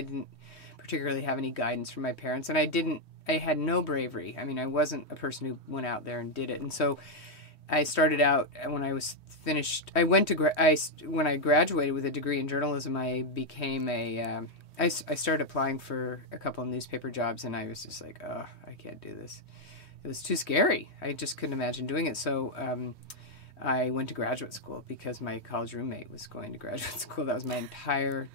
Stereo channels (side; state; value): right; late; 3.2 ms